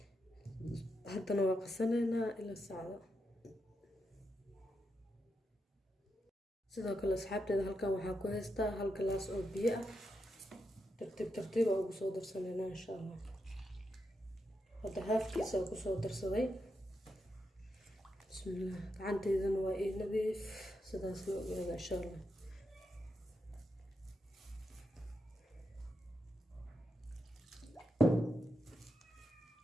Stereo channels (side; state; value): both; normal; correlation 0.84